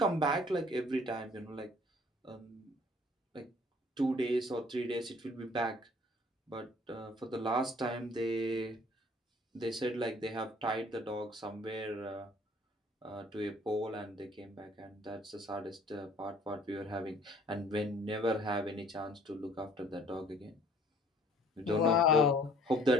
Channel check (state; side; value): normal; both; correlation 0.55